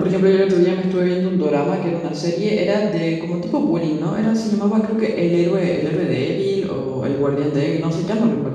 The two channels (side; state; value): both; identical; correlation 1.00